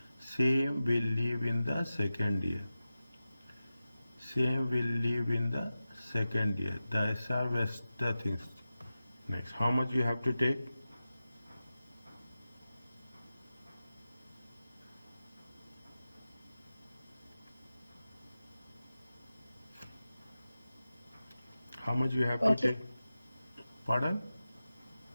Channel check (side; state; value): both; inverted; correlation -0.94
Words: same will leave in the second year. Same will leave in the second year. The SR was the things. Next, how much you have to take? How much you have to take? Pardon?